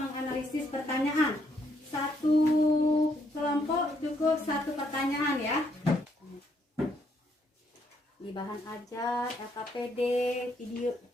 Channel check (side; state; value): both; normal; correlation 0.72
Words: pertanyaan. Satu kelompok cukup 1 pertanyaan ya. Di bahan ajar, LKPD,